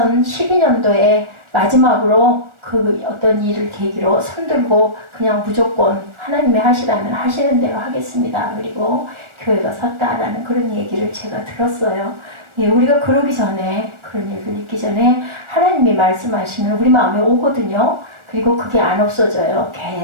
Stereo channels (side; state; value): left; late; 1.4 ms